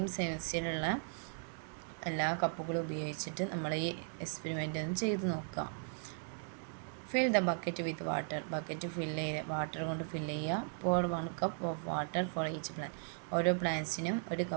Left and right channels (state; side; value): silent; left; 53 dB below the other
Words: സൈസിലുള്ള എല്ലാ കപ്പുകളും ഉപയോഗിച്ചിട്ട് നമ്മൾ ഈ എക്സ്പെരിമെൻ്റ് ഒന്ന് ചെയ്ത് നോക്കുക. Fill the bucket with water. Bucket water കൊണ്ട് ഫില്ല് ചെയ്യുക. pour 1 cup of water for each plant. ഓരോ പ്ലാന്റ്സിനും ഒരു